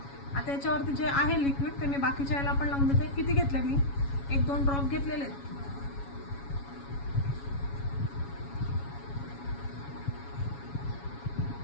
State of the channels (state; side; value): late; right; 7.2 ms